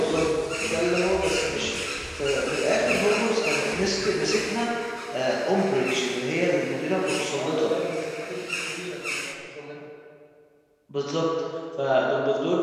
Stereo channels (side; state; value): both; identical; correlation 1.00